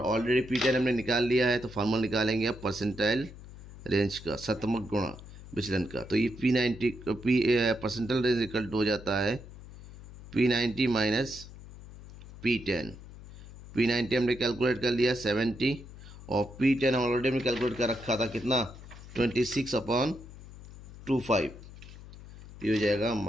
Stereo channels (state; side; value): noise; left; hum, 16 dB below the sound